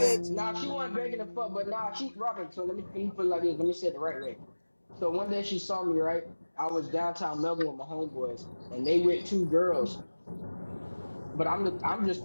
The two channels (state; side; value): inverted; both; correlation -1.00